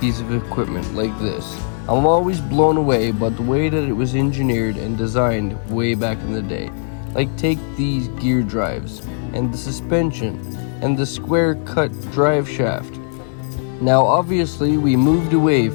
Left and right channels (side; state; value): right; silent; digital silence